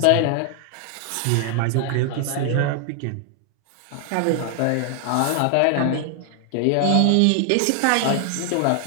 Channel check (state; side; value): different; both; correlation 0.00